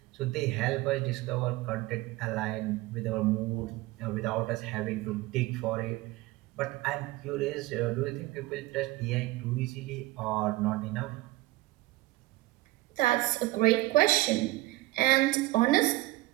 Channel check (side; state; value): left; quieter; 18.7 dB